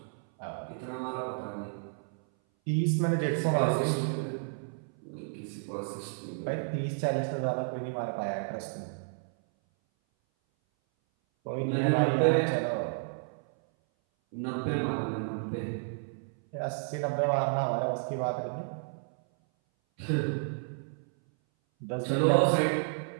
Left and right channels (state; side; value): silent; left; 57 dB below the other